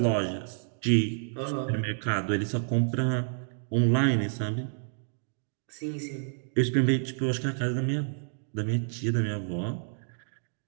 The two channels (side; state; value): left; silent; digital silence